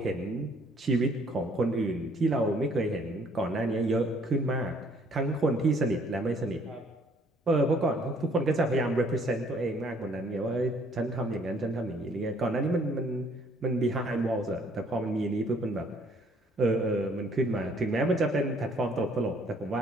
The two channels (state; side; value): normal; both; correlation 0.62